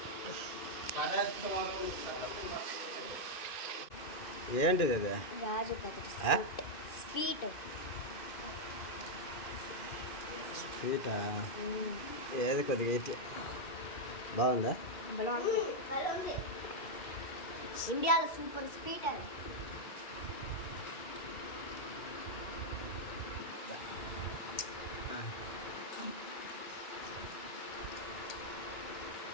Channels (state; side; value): late; right; 2.5 ms